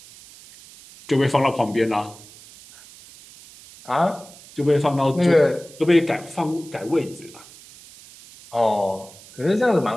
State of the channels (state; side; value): noise; right; hiss, 21 dB below the sound